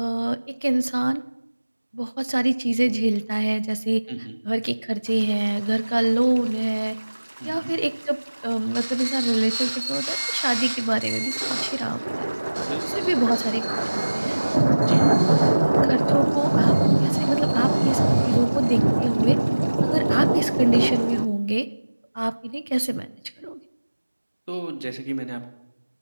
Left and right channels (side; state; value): both; inverted; correlation -1.00